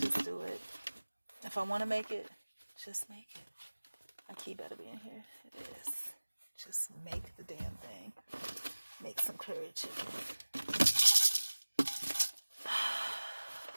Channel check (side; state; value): both; inverted; correlation -1.00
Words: do it. If I want to make it, just make it. My key better be in here. It is. Just make the damn thing. Make some curry chicken.